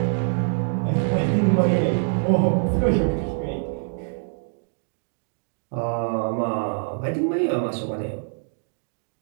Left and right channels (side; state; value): left; silent; digital silence